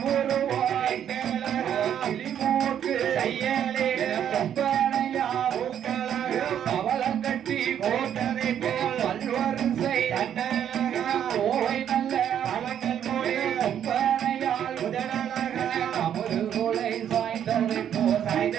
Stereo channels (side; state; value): left; quieter; 9.5 dB